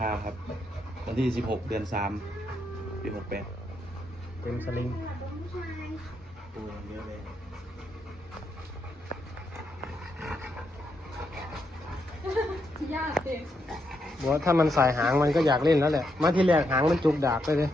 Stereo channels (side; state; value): both; normal; correlation 0.80